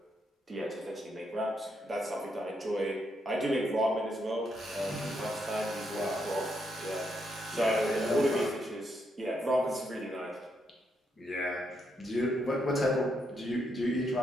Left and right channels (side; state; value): both; normal; correlation 0.79